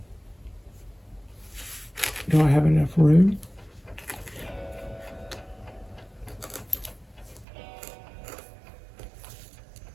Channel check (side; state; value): left; drops out; at 7.5 s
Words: do I have enough room?